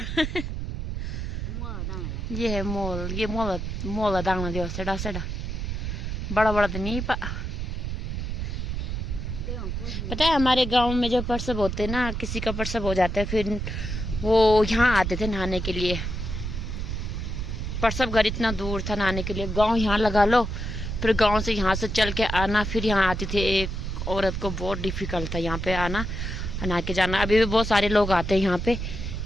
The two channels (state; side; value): noise; right; rumble, 4 dB below the sound